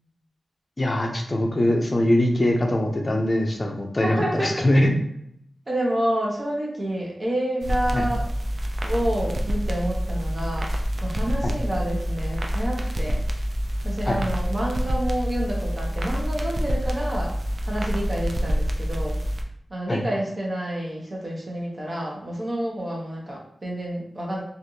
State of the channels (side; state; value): both; normal; correlation 0.96